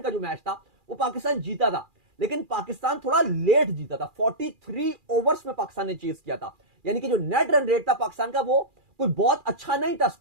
का जो मैच था वो पाकिस्तान जीता था, लेकिन पाकिस्तान थोड़ा लेट जीता था। 43 ओवर्स में पाकिस्तान ने चेस किया था, यानी कि जो नेट रन रेट था पाकिस्तान का वो कोई बहुत अच्छा नहीं था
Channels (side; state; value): left; late; 2.4 ms